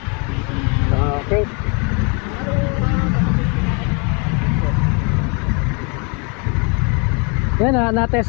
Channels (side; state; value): right; quieter; 33.9 dB